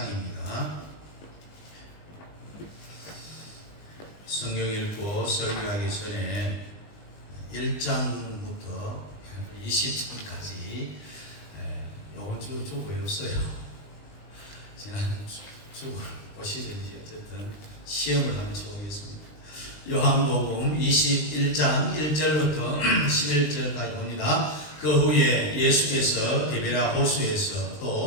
성경 읽고 설교하기 전에 1장부터 20장까지 이번 주 외웠어요. 지난 주 보시든지 어쨌든 시험을 한번 쳐보겠습니다. 요한복음 21장 1절부터 11절까지 봅니다. 그 후에 예수께서 게리라 호수에서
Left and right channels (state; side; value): late; right; 20 ms